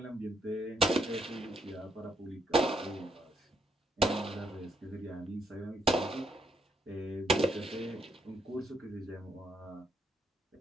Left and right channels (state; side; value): normal; both; correlation 0.74